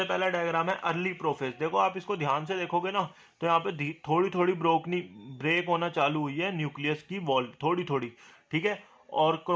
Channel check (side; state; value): both; identical; correlation 1.00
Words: पहला डायग्राम है अर्ली प्रोफेज. देखो आप इसको ध्यान से देखोगे ना, तो यहाँ पे थोड़ी थोड़ी ब्रेक होना चालू हुई है न्यूक्लियस की वॉल, थोड़ी थोड़ी. ठीक है. और